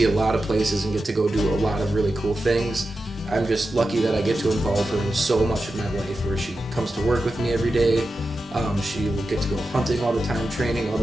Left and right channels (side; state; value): both; normal; correlation 0.91